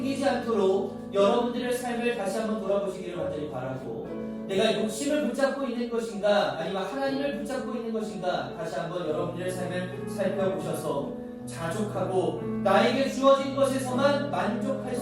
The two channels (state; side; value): identical; both; correlation 1.00